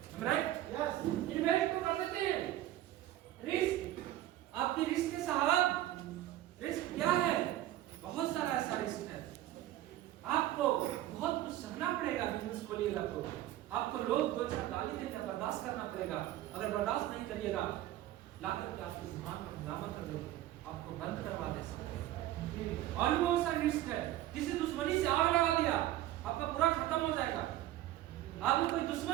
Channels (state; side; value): quieter; left; 14.2 dB